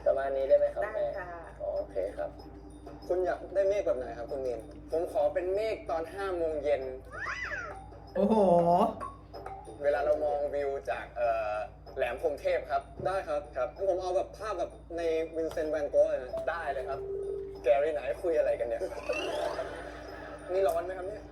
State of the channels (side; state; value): both; identical; correlation 1.00